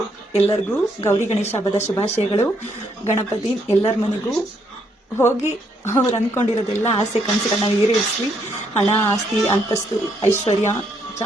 ಎಲ್ಲರಿಗೂ ಗೌರಿ ಗಣೇಶ ಹಬ್ಬದ ಶುಭಾಶಯಗಳು. ಗಣಪತಿ ಎಲ್ಲರ ಮನೆಗೂ ಹೋಗಿ ಅವ್ರು ಅಂದ್ಕೊಂಡಿರೋದೆಲ್ಲ ಆಸೆ ಕನಸುಗಳನ್ನ ಈಡೇರಿಸಲಿ. ಹಣ, ಆಸ್ತಿ, ಅಂತಸ್ತು, ಐಶ್ವರ್ಯ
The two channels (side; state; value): both; normal; correlation 0.73